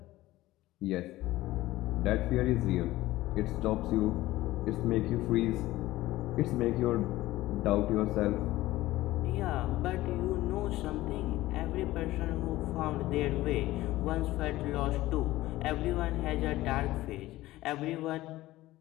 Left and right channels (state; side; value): quieter; right; 16.9 dB